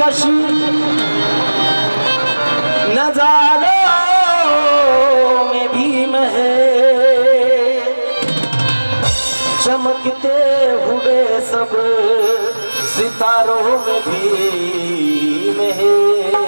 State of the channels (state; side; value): inverted; both; correlation -1.00